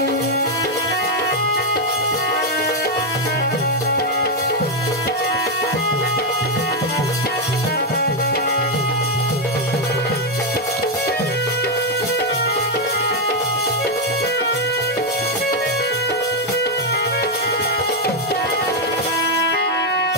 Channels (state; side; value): normal; both; correlation 0.03